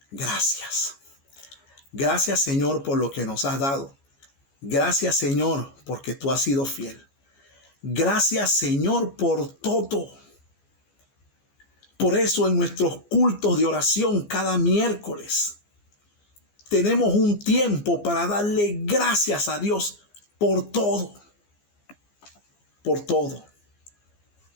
gracias. Gracias, Señor, por lo que nos has dado. Gracias, Señor, porque tú has sido fiel. Gracias, Señor, por todo. Por eso en nuestros cultos de oración cada miércoles tenemos un tiempo para darle gracias a Dios por todo. Por todo.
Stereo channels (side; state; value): right; late; 14 ms